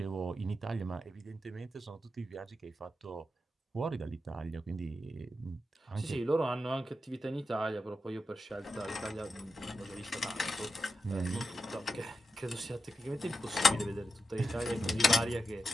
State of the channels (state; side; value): normal; both; correlation 0.88